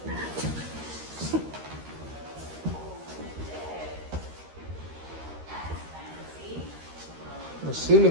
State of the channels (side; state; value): left; late; 13 ms